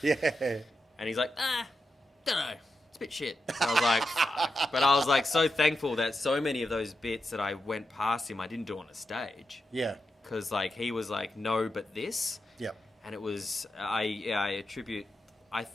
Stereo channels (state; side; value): normal; both; correlation 0.87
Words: Yeah. And he's like, don't know, it's a bit shit. And I was like, fuck. But I was like so thankful that so many of those bits that I went past him, I didn't do on a stage. Yeah. Because he was like, no, but this. Yeah. And it was, I attribute, I